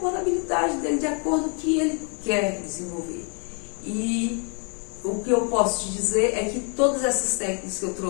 com a habilidade dele, de acordo com o que ele quer desenvolver. E o que eu posso te dizer é que todas essas técnicas que eu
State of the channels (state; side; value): quieter; right; 37.4 dB